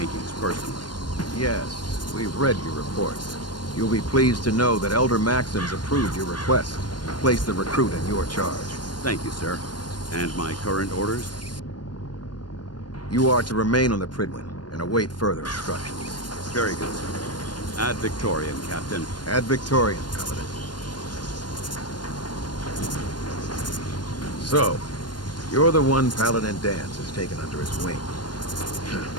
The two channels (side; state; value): right; late; 0.71 ms